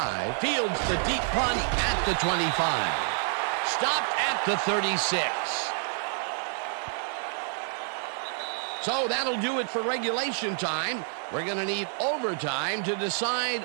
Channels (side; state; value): left; silent; 55 dB below the other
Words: fields the deep punt at the 25. Stopped at the 36. So that'll do it for regulation time. We're going to need overtime to decide